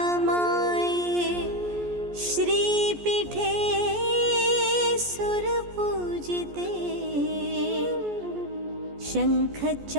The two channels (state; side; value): late; left; 14 ms